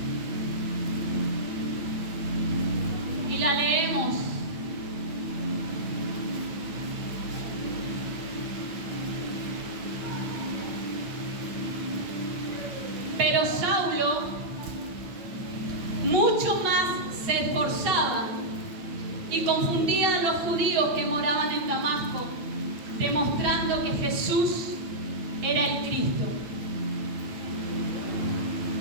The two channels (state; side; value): late; left; 8.9 ms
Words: Y la leemos. Pero Saulo mucho más se esforzaba y confundía a los judíos que moraban en Damasco, demostrando que Jesús era el Cristo.